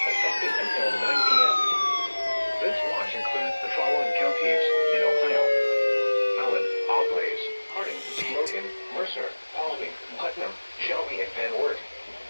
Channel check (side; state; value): both; inverted; correlation -1.00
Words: effective until 9 p.m. This watch includes the following counties in Ohio: Allen, Auglaize, Harding, Logan, Mercer, Paulding, Putnam, Shelby, and Van Wert.